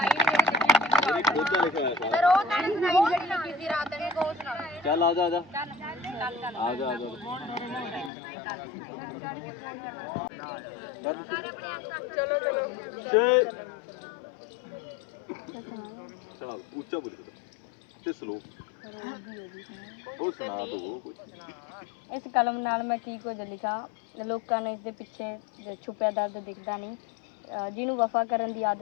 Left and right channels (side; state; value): right; drops out; at 8.1 s